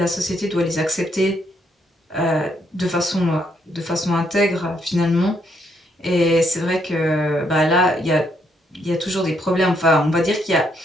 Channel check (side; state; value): both; normal; correlation 0.74